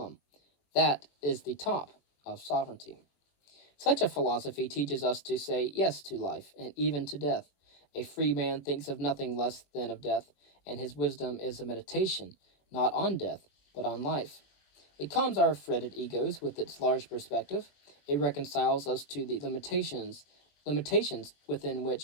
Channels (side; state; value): right; late; 21 ms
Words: That is the top of sovereignty. Such a philosophy teaches us to say yes to life, and even to death. A free man thinks of nothing less than of death, and his wisdom is a meditation, not on death, but on life. It calms our fretted egos with its large perspective. It reconciles us to the limitations within